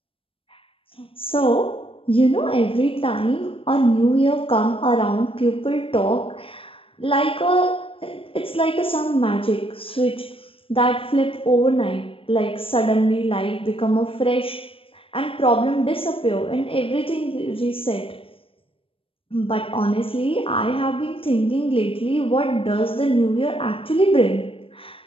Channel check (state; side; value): late; right; 0.26 ms